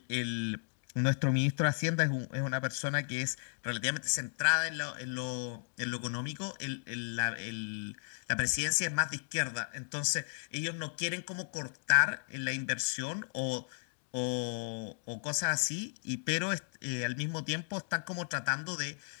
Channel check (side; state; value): right; silent; digital silence